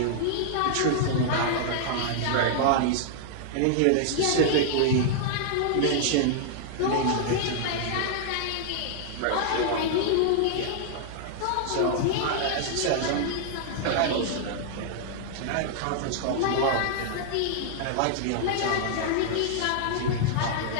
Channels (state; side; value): different; both; correlation -0.01